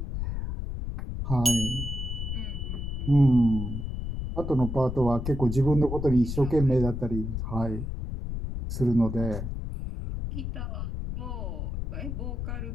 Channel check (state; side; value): noise; left; rumble, 4 dB below the sound